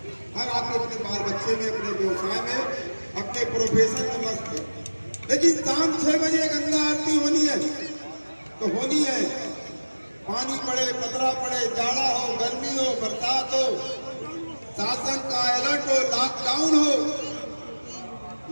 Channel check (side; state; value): both; inverted; correlation -1.00